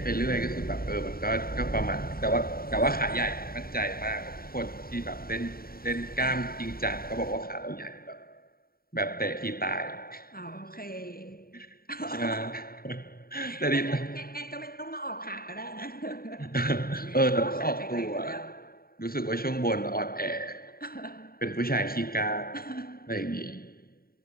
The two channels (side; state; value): right; late; 0.43 ms